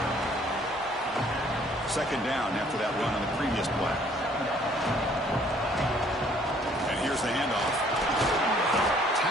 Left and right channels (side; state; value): both; normal; correlation 0.60